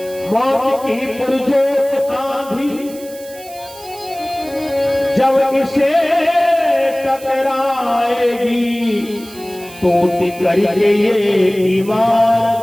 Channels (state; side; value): noise; right; hiss, 19 dB below the sound